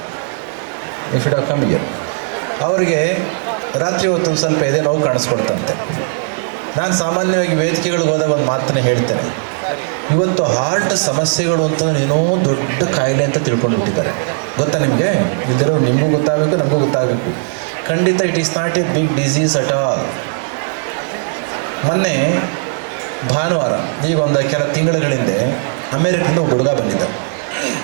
You should have come here. ಅವರಿಗೆ ರಾತ್ರಿ ಹೊತ್ತು ಒಂದು ಸ್ವಲ್ಪ ಎದೆ ನೋವು ಕಾಣಿಸ್ಕೊಳ್ತಂತೆ. ನಾನು ಸಾಮಾನ್ಯವಾಗಿ ವೇದಿಕೆಗಳಿಗೆ ಹೋದಾಗ ಒಂದು ಮಾತನ್ನೇ ಹೇಳ್ತೇನೆ, ಇವತ್ತು ಹಾರ್ಟ್ ಸಮಸ್ಯೆಗಳು ಅಂತಂದ್ರೆ ಏನೋ ದೊಡ್ಡ ಕಾಯಿಲೆ ಅಂತ ತಿಳ್ಕೊಂಡು ಬಿಟ್ಟಿದ್ದಾರೆ. ಗೊತ್ತಾ ನಿಮಗೆ? ಇದ್ದರೂ ನಿಮಗೂ ಗೊತ್ತಾಗಬೇಕು, ನಮಗೂ ಗೊತ್ತಾಗಬೇಕು. ಖಂಡಿತ it is not a big disease at all. ಮೊನ್ನೆ ಭಾನುವಾರ, ಈಗ ಒಂದು ಕೆಲ ತಿಂಗಳ ಹಿಂದೆ ಅಮೇರಿಕದಿಂದ ಒಬ್ಬ ಹುಡುಗ ಬಂದಿದ್ದ.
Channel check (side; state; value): left; silent; digital silence